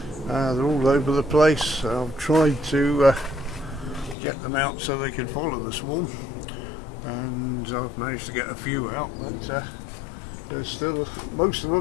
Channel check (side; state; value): right; drops out; at 4.2 s